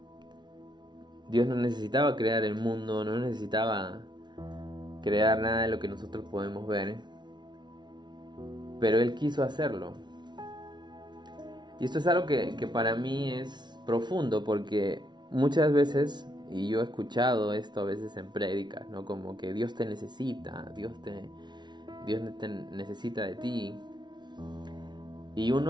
Dios no necesitaba crear el mundo, no necesitaba crear nada de lo que nosotros podemos ver. Pero Él quiso hacerlo. Y esto es algo que para mí es profundo, porque muchas veces, y yo he escuchado esto a veces en prédicas, ¿no?, como que Dios te necesita, Dios te necesita de ti. Y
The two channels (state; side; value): late; left; 0.21 ms